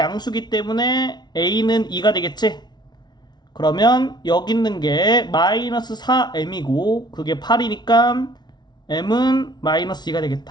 때문에 a는 2가 되겠지? 그러면 여기 있는 게 마이너스 4m이고 그게 8이니까 m은 마이너스 2가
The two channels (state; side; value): late; right; 0.20 ms